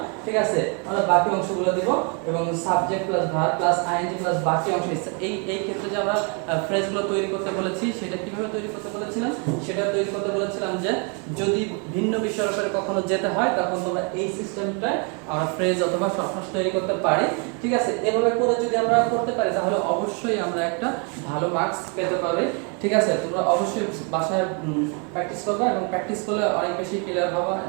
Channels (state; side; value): quieter; left; 36.4 dB